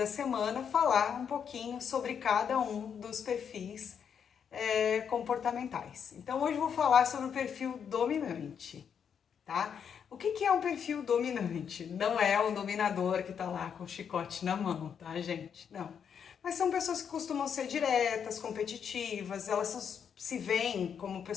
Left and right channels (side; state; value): right; quieter; 7.5 dB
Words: semana, falar um pouquinho sobre cada um dos perfis comportamentais. Então, hoje eu vou falar sobre o perfil dominante, tá? O que é um perfil dominante? Não é o dominador que tá lá com o chicote na mão, tá, gente? Não. Mas são pessoas que costumam ser diretas, competitivas, elas se veem como